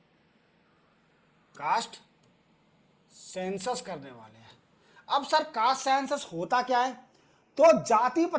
कास्ट सेंसस करने वाले हैं। अब सर कास्ट सेंसस होता क्या है, तो जाति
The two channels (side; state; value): both; identical; correlation 1.00